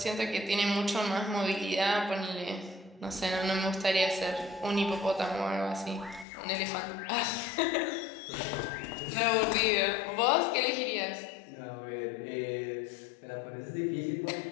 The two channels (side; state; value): right; drops out; at 6.2 s